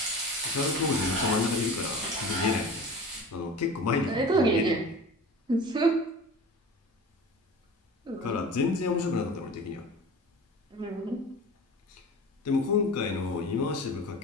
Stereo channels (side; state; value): both; normal; correlation 0.37